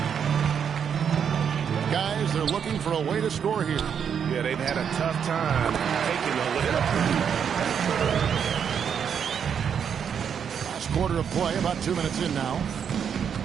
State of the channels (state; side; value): quieter; left; 7.6 dB